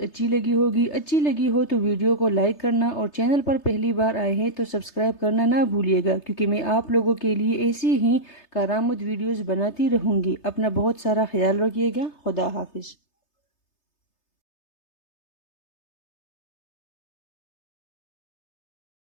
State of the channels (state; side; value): late; right; 3.3 ms